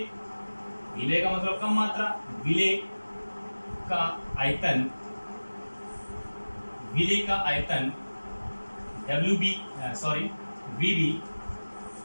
का मतलब कम मात्रा, विलेय का आयतन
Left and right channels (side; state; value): both; inverted; correlation -1.00